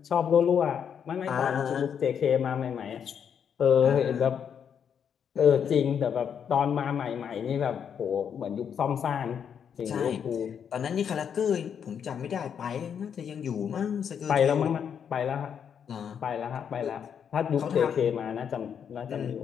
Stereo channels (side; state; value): right; quieter; 7.8 dB